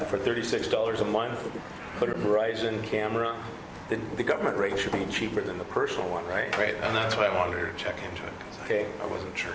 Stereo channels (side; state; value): both; identical; correlation 1.00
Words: for $36 a month, put a Verizon camera? The government rate should be cheaper than the personal one, right? Right, and that's why I wanted to check into it because Okay. I wasn't sure.